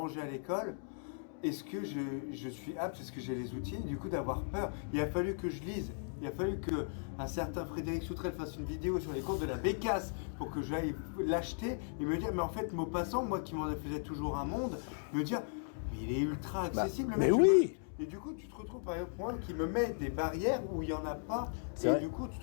à l'école. Est-ce que je suis apte, est-ce que j'ai les outils, du coup d'avoir peur. Il a fallu que je lise. Il a fallu qu'un certain Frédéric Soutrel fasse une vidéo sur les cours de la Bécasse pour que j'aille l'acheter et me dire, mais en fait, Maupassant, moi qui m'en faisais toujours un monde, me dire, Mais il est ultra accessible. le mais mec, oui. Et du coup, tu te retrouves par exemple moi qui me met des barrières où il n'y en a pas. C'est Et vrai. du coup, tu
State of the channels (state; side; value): silent; right; digital silence